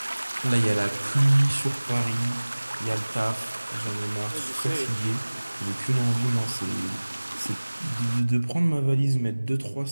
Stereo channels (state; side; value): inverted; both; correlation -1.00